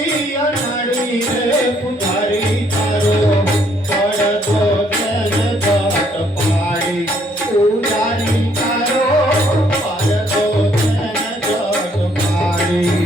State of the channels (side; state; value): both; normal; correlation 0.67